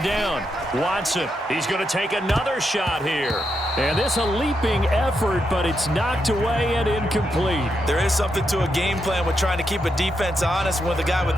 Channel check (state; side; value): normal; both; correlation 0.83